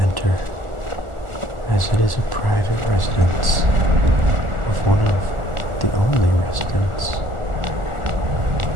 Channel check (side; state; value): left; late; 1.4 ms